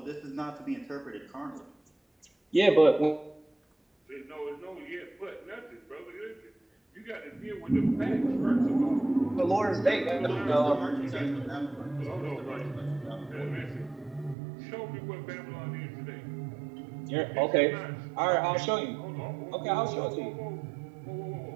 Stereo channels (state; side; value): drops out; left; at 14.4 s